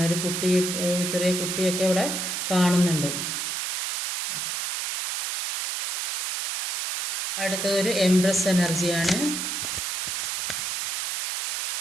ഒരു ചെറിയ കുട്ടിയൊക്കെ ഇവിടെ കാണുന്നുണ്ട്. അടുത്തതൊരു എംപ്രസ് എനർജിയാണ്.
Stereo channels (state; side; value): noise; right; hiss, 2 dB below the sound